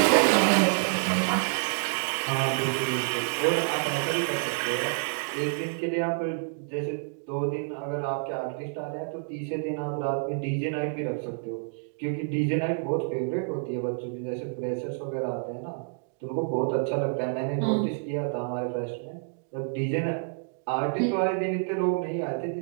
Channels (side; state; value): left; silent; digital silence